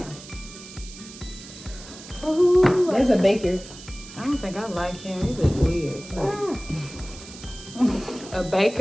Ooh, There's a baker. I don't think I like him. He looks weird. A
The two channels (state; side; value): noise; right; hiss, 16 dB below the sound